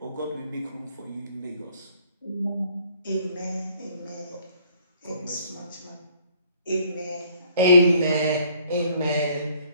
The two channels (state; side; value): inverted; both; correlation -0.60